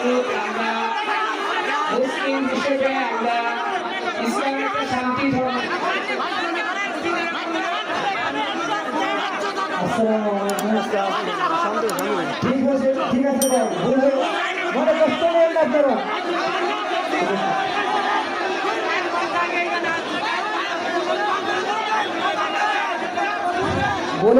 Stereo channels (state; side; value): identical; both; correlation 1.00